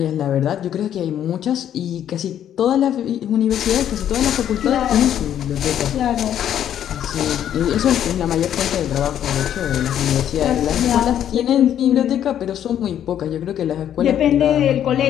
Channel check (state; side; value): quieter; right; 10.3 dB